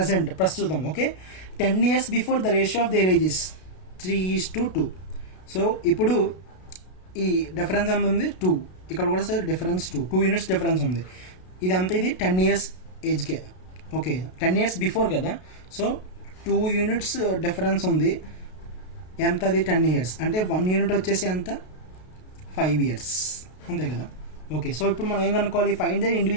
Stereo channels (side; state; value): right; late; 32 ms